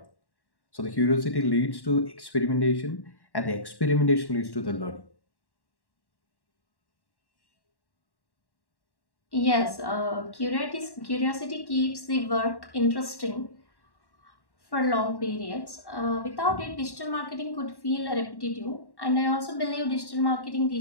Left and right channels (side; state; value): right; late; 1.1 ms